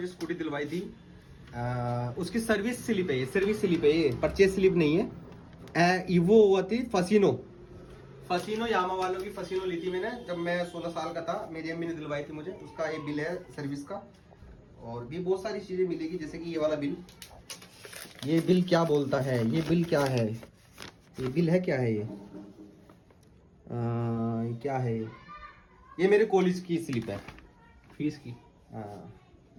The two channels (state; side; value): identical; both; correlation 1.00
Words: स्कूटी दिलवाई थी। उसकी सर्विस स्लिप है ये, सर्विस स्लिप है ये, परचेज स्लिप नहीं है। वो हुआ थी फसीनो यामा वालों की फसीनो ली थी मैंने, जब मैं 16 साल का था, मेरी अम्मी ने दिलवाई थी मुझे, उसका ये बिल है सर्विस का। और भी बहुत सारी चीजें मिलेगी, जैसे कि ये वाला बिल, ये बिल क्या बोलता है, ये बिल क्या है, ये बिल है क्या है, ये क्या है, ये मेरे कॉलेज की स्लिप है, फीस की। हाँ